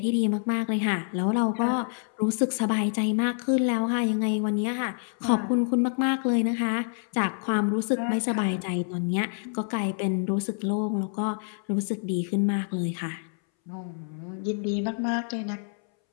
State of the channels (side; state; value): right; silent; 60 dB below the other